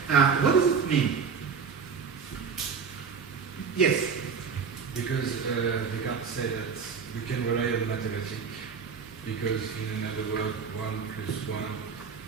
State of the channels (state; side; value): quieter; left; 6.1 dB